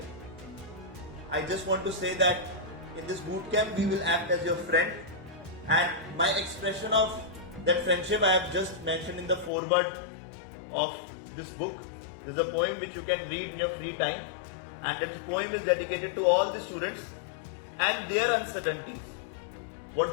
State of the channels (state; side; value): drops out; right; at 9.5 s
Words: I just want to say that in this bootcamp, we will act as your friend. And my expression of that friendship, I have just mentioned in the foreword of this book. There's a poem which you can read in your free time, and this poem is dedicated to all the students and their uncertainties, what